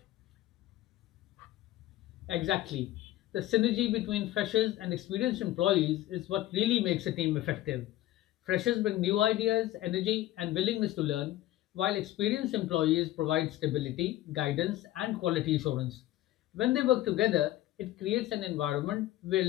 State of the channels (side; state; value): right; quieter; 14.9 dB